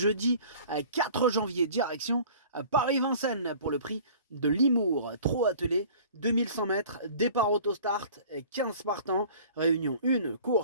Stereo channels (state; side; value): inverted; both; correlation -0.46